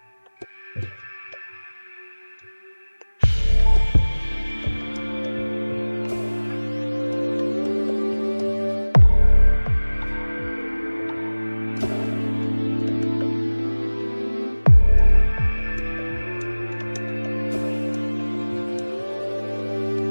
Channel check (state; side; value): inverted; both; correlation -1.00